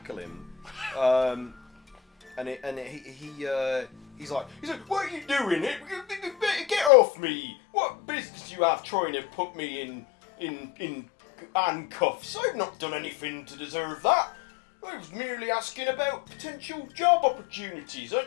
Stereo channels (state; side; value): drops out; right; at 6.9 s